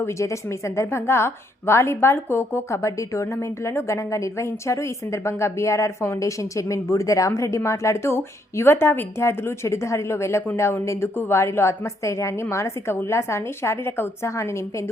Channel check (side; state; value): both; normal; correlation 0.72